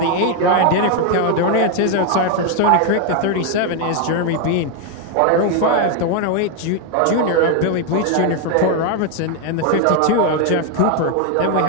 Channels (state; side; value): different; both; correlation 0.01